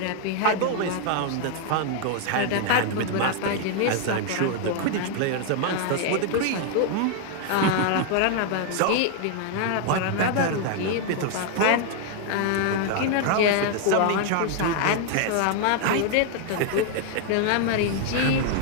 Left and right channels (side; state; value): both; different; correlation 0.00